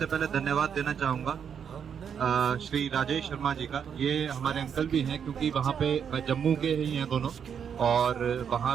पहले धन्यवाद देना चाहूँगा श्री राजेश शर्मा जी का। ये हमारे अंकल भी हैं, क्योंकि वहाँ पे जम्मू के ही हैं दोनों, और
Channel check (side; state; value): left; quieter; 7.6 dB